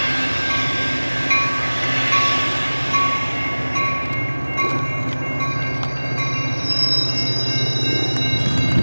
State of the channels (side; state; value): both; inverted; correlation -1.00